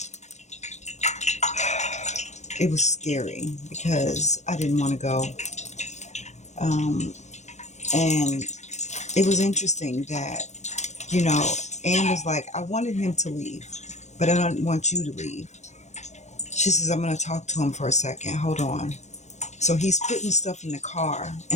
It was scary because I didn't want to go. And it was interesting that, Anne was like, I wanted him to leave, but I don't want you to leave. She says, I'm going to talk to him for a second. Hold on. So he's putting stuff in the car.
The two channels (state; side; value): late; right; 0.33 ms